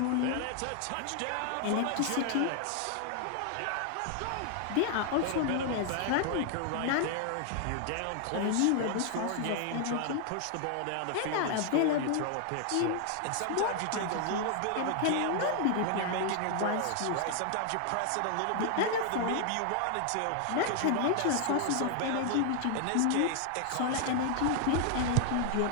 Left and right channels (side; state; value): both; different; correlation 0.00